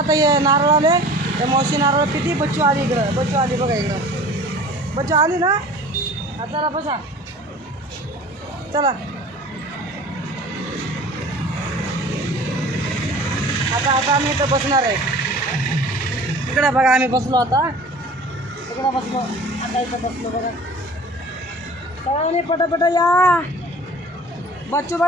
हे नारळ आले. हे मावशी नारळ किती. बच्चू आली इकडं. बच्चू आली बघा इकडं. बच्चू आली ना. हा चला बसा. चला आता आम्ही इथं बसणार आहे. इकडं बघा आम्ही बसलो आता. इकडं बसलो आता. इथं बसलो बघा. सगळ्यांनी पटापटा या. बच्चू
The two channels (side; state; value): both; normal; correlation 0.44